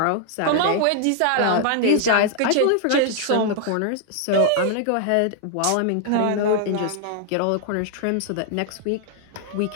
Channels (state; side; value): different; both; correlation 0.00